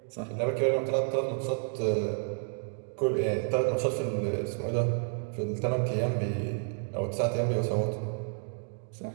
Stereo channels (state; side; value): silent; left; 57 dB below the other